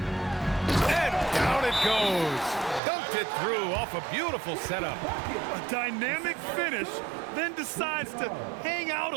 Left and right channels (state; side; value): drops out; left; at 2.8 s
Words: down it goes. Dunked it through off a beautiful setup. A dynamic finish, then decides to hang out